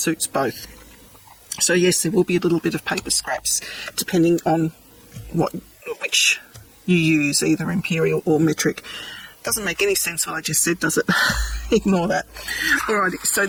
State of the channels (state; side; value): identical; both; correlation 1.00